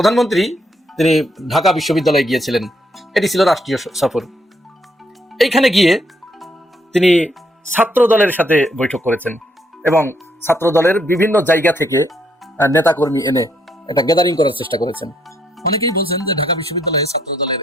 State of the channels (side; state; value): both; normal; correlation 0.73